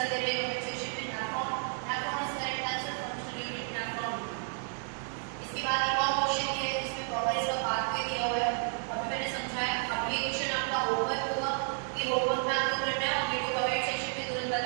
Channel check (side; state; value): left; silent; 57 dB below the other